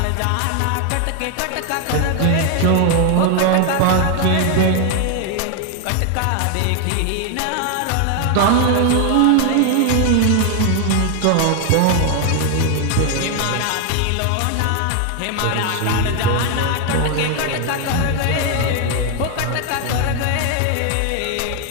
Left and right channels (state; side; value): different; both; correlation 0.01